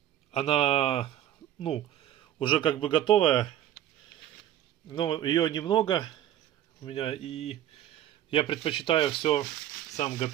Она, ну, уже как бы готовая, но ее немного у меня, и я предпочитаю все сам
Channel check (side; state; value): left; quieter; 11.9 dB